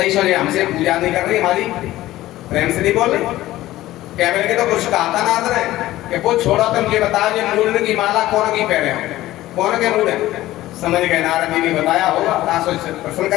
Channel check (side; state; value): right; quieter; 15.9 dB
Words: सोचे हमसे पूजा नहीं कर रही, हमारी प्रेम से नहीं बोल रही। क्या बोले तो कुछ कहा था नारद ने कि वो छोड़ो, तुम ये बताओ ये मुंडन की माला कौन की पहने हो, कौन के मूड है। समझ गए नारद जी ने बताया होगा, प्रश्न